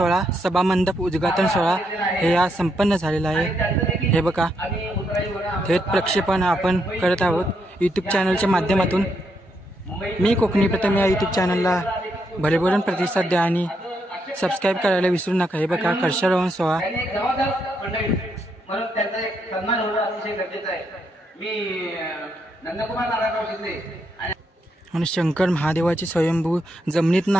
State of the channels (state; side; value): normal; both; correlation 0.78